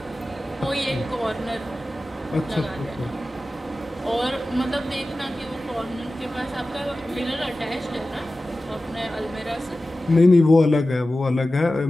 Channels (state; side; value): normal; both; correlation 0.95